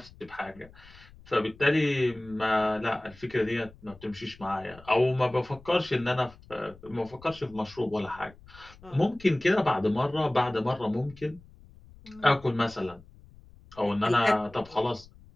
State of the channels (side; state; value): left; noise; rumble, 23 dB below the sound